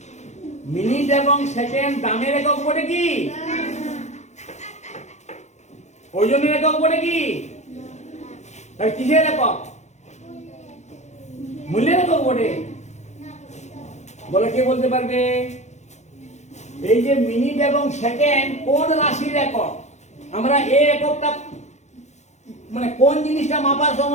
মিনিট এবং সেকেন্ড দামের একক বলে কি? ওজনের একক বলে কি? তাহলে কিসের একক? মূল্যের একক বলে। বলে কে বলতে পারবে? এই যে মিনিট এবং সেকেন্ড কোন রাশির একক? আমরা এই এককটা মানে কোন জিনিসটা মাপার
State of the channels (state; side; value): late; right; 0.33 ms